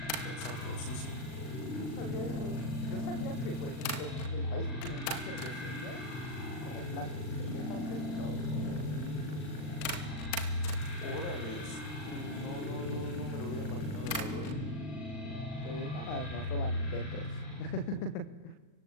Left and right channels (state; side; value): late; right; 40 ms